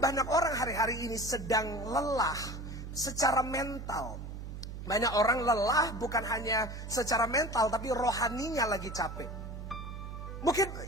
banyak orang hari-hari ini sedang lelah secara mental. Banyak orang lelah bukan hanya secara mental, tapi rohaninya lagi capek.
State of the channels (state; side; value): noise; right; hum, 9 dB below the sound